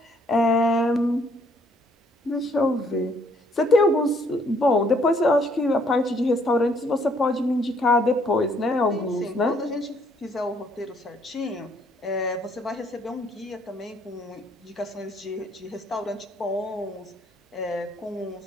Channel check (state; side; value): normal; both; correlation 0.65